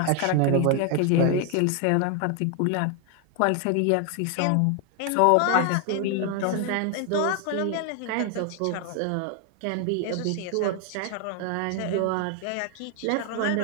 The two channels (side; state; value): both; different; correlation 0.00